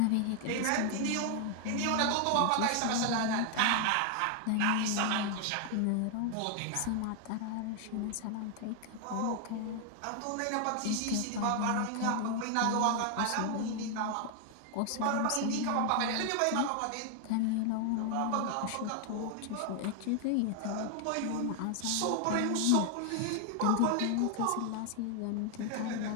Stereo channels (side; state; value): both; different; correlation 0.00